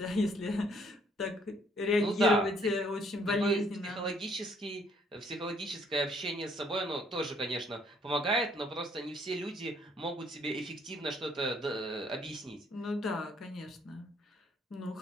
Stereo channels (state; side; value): normal; both; correlation 0.65